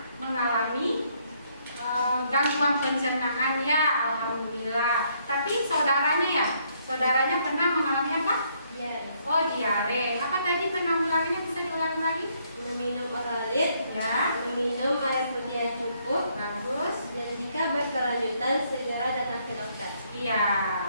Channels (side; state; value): both; inverted; correlation -0.70